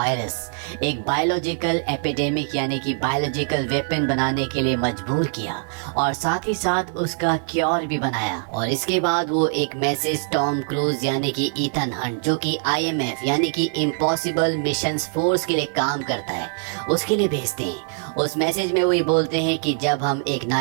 एक बायोलॉजिकल एपिडेमिक यानी कि बायोलॉजिकल वेपन बनाने के लिए मजबूर किया और साथ ही साथ उसका क्योर भी बनाया। और इसके बाद वो एक मैसेज टॉम क्रूज यानी कि ईथन हंट जो कि IMF यानी कि इम्पॉसिबल मिशंस फोर्स के लिए काम करता है उसके लिए भेजते हैं। उस मैसेज में वो ये बोलते हैं कि जब हम एक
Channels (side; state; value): left; silent; 57 dB below the other